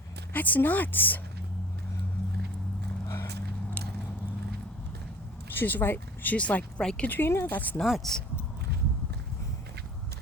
That's nuts. She's right. She's like, right, Katrina? That's nuts.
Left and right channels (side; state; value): both; normal; correlation 0.44